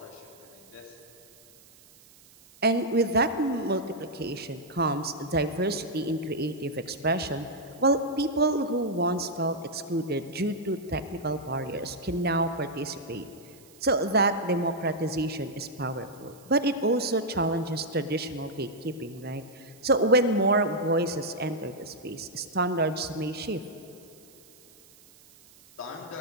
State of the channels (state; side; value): noise; right; hiss, 25 dB below the sound